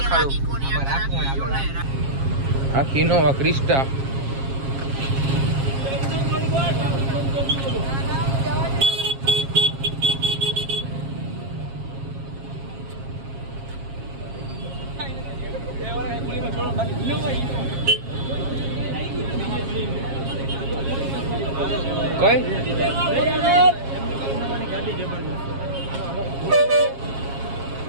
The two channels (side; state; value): left; late; 7.4 ms